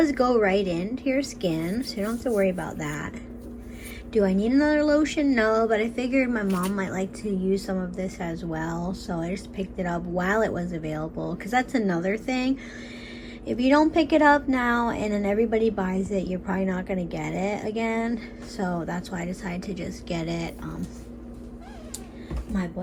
go right into your skin, so you don't have to worry about that. Do I need another lotion? No, but I figured my mom might like to use some of this as well, so I just picked it up while it was available, because that's another thing. If you don't pick it up now and then everybody buys it, you're probably not going to get it again, so that's why I decided to just get it. My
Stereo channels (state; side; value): identical; both; correlation 1.00